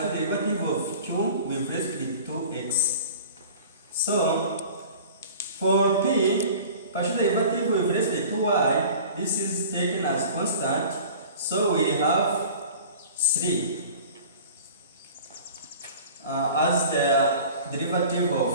derivative of q with respect to x. So for p, partial derivative with respect to y, this is taken as constant. So we have 3 as the derivative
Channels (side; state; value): both; inverted; correlation -0.43